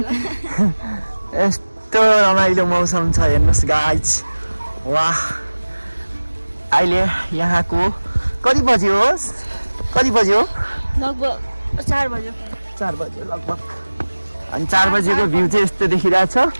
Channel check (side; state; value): both; inverted; correlation -1.00